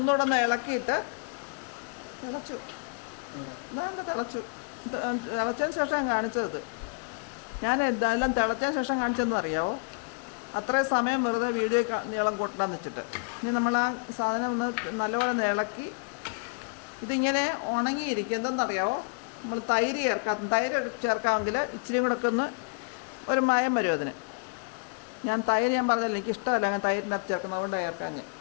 ഒന്ന് ഇളക്കിയിട്ട് തിളച്ചു. തിളച്ചതിന് ശേഷം കാണിച്ചത്. ഞാൻ എന്തായാലും തിളച്ചതിന് ശേഷം കാണിച്ചതെന്ന് അറിയാവോ? അത്രയും സമയം വെറുതെ വീഡിയോ നീളം കൂട്ടണം വെച്ചിട്ട്. ഇനി നമ്മൾ ആ സാധനം ഒന്ന് നല്ലപോലെ ഇളക്കി ഇതിങ്ങനെ ഉണങ്ങിയിരിക്കും. എന്തെന്നറിയാവോ? നമ്മൾ തൈര് ചേർക്കാമെങ്കിൽ ഇച്ചിരി കൂടെ ഒക്കെ ഒന്ന് ഒരു മയം വരും അതിന്. ഞാൻ പറഞ്ഞില്ല, എനിക്ക് ഇഷ്ടമല്ല ഞാൻ തൈരിനകത്ത് ചേർക്കുന്നത്, അതുകൊണ്ട് ചേർക്കാൻ.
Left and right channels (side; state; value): right; quieter; 38.4 dB